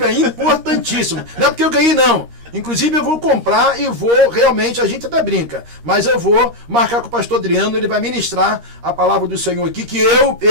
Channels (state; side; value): late; left; 13 ms